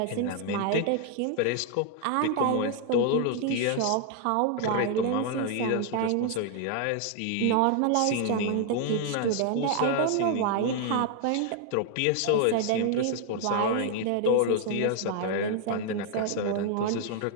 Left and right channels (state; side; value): different; both; correlation 0.00